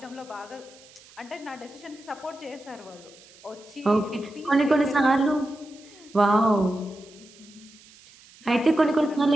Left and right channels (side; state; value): right; noise; hiss, 24 dB below the sound